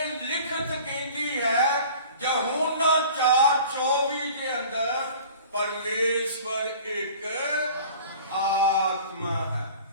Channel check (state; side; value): inverted; both; correlation -0.44